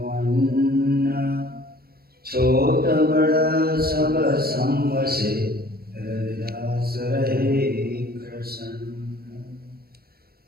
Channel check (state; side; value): late; left; 0.44 ms